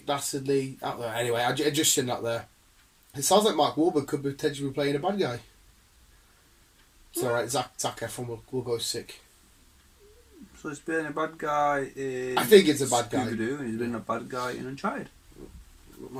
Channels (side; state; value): both; identical; correlation 1.00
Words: Dastardly out there. Anyway, I just seen that there. It sounds like Mark Wahlberg could potentially be playing a bad guy. It's alright, Zac Efron will go sick. So he's been a bad guy in... I think it's a bad guy. Scooby-Doo, and he's been a bad guy in Uncharted.